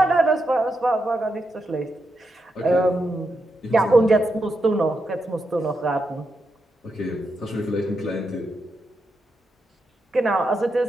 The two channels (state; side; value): normal; both; correlation 0.85